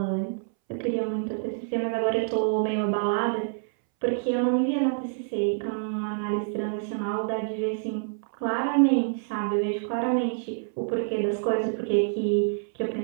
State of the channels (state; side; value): silent; left; 60 dB below the other